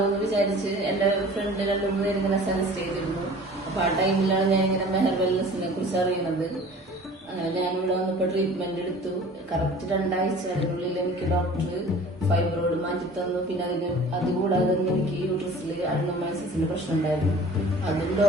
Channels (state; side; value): normal; both; correlation 0.45